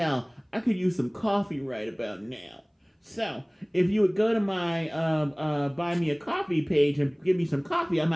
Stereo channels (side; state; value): both; identical; correlation 1.00